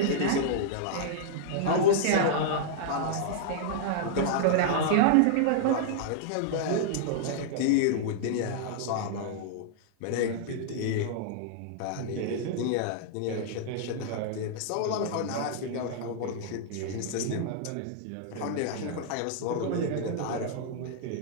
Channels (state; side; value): different; both; correlation -0.01